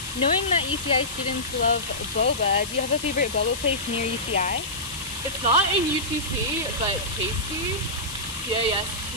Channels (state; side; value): noise; left; hiss, 10 dB below the sound